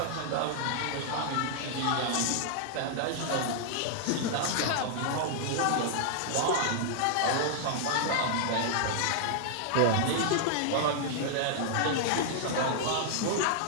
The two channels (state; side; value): different; both; correlation -0.01